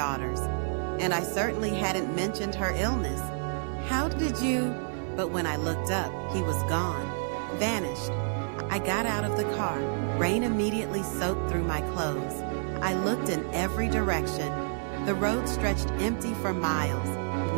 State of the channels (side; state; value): left; silent; 58 dB below the other